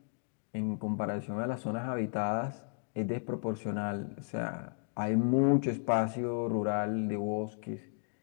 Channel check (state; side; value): silent; right; 55 dB below the other